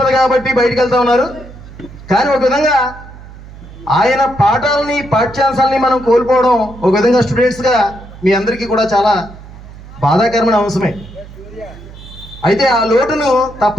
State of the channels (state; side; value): noise; right; hum, 17 dB below the sound